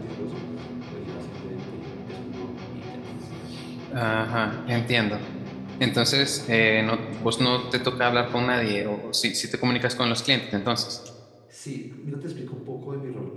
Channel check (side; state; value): both; identical; correlation 1.00